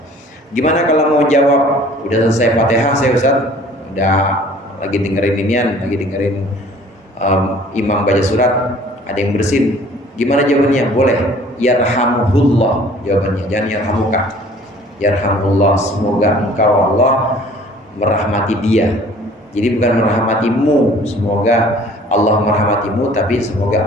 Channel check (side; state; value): both; normal; correlation 0.52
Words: Gimana kalau mau jawab udah selesai Fatihah saya Ustaz, udah lagi dengerin imam baca surat, ada yang bersin, gimana jawabannya? Boleh yarhamuhullah jawabannya, jangan yarhamuka. Yarhamullah, semoga engkau Allah merahmati dia. Jadi bukan merahmatimu, semoga Allah merahmatimu, tapi